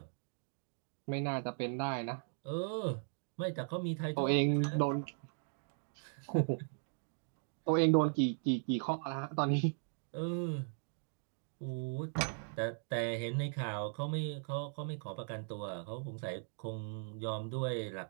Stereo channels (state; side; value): silent; left; 52 dB below the other